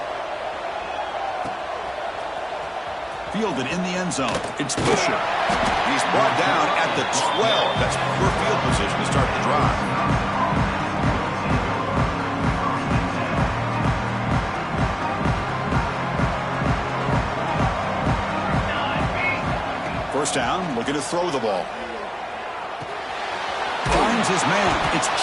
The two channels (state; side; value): identical; both; correlation 1.00